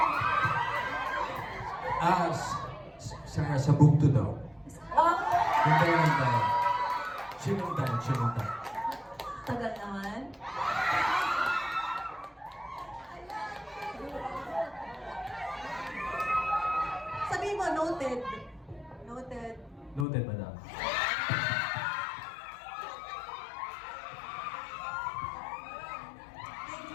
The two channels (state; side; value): drops out; right; at 20.1 s